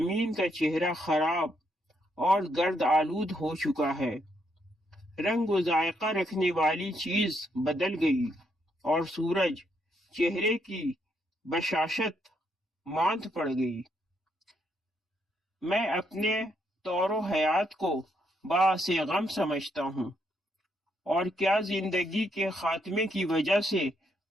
کا چہرہ خراب اور گرد آلود ہو چکا ہے، رنگ و ذائقہ رکھنے والی چیز بدل گئی اور سورج چہرے کی بشاشت ماند پڑ گئی۔ میں اپنے طور و حیات کو باعث غم سمجھتا ہوں، اور کیا زندگی کے خاتمے کی وجہ سے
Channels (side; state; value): both; normal; correlation 0.75